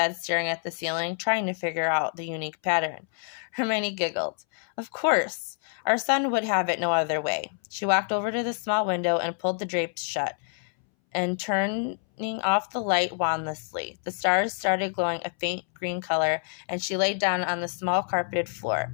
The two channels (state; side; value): silent; right; 60 dB below the other